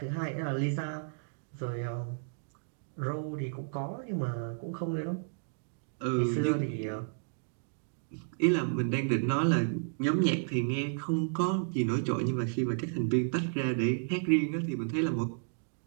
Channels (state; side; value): silent; left; digital silence